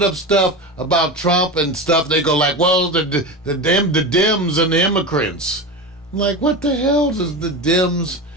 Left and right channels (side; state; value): both; normal; correlation 0.24